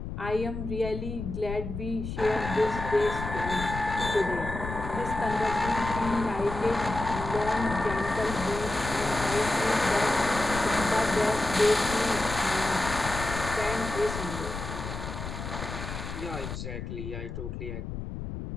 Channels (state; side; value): noise; left; rumble, 7 dB below the sound